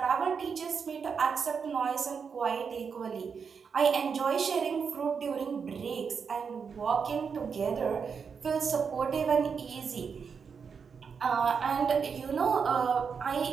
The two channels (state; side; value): quieter; left; 6.1 dB